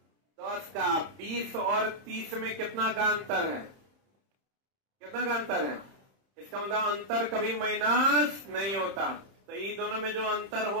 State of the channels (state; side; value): late; left; 31 ms